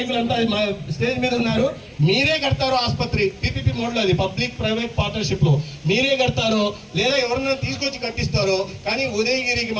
స్టేజ్ మీద ఉన్నారు. మీరే కడతారో ఆసుపత్రి పీపీపీ మోడ్లో, అది పబ్లిక్ ప్రైవేట్ పార్ట్నర్షిప్ లో మీరే కడతారో లేదా ఎవరన్నా తీసుకొచ్చి కట్టిస్తారో, కానీ ఉదయగిరికి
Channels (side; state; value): both; identical; correlation 1.00